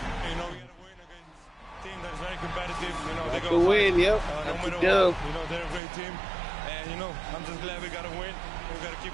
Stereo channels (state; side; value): drops out; left; at 5.8 s